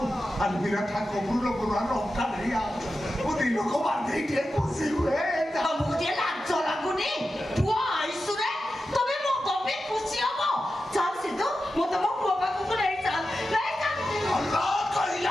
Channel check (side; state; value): both; normal; correlation 0.91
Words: ଆଲୋ ବିରାଟ କବୁର ପୁରାଣ ଅଙ୍କା ନେଇ ଆ ମୁଁ ଦିନକୁ ବାନ୍ଧି ଟିକେ ଖୁସି ହୁଏ। ତମକୁ ଟିକେ ଲାଜ ଲାଗୁନି? ପୁଅ ଆଇସୁରେ ତମେ ମୋ ତମେ ଖୁସି ହବ। ଚାଲ ସିଧୁ ମୁଁ ତମ ପୁଅ ପାଖକୁ ନେଇ ଚାଲ ନେଇ ଚାଲ। ଭଲ